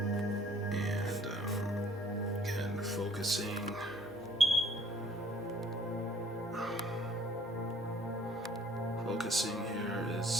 And again, focusing. Focusing here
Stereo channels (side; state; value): both; normal; correlation 0.56